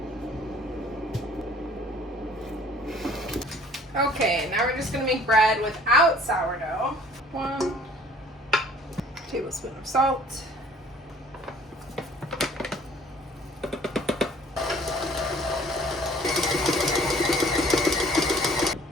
Okay, now we're just gonna make bread without sourdough. 1 tablespoon of salt.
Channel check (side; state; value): both; normal; correlation 0.53